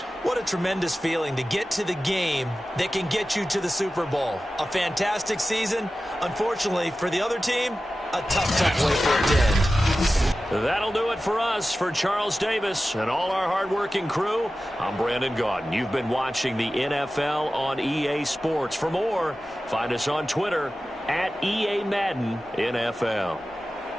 What a tremendous feeling to get to the game that can get you to the Super Bowl. A fantastic season. Unfortunately, for the other team, a tough way for it to end. That'll do it for us. For Charles Davis and all our hardworking crew, I'm Brandon Gaudin. You've been watching the NFL on EA Sports. For more, find us on Twitter at EA Madden NFL.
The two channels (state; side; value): normal; both; correlation 0.94